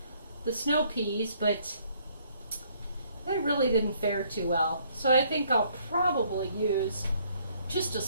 the snow peas, but they really didn't fare too well. So I think I'll probably use just a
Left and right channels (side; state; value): both; inverted; correlation -0.65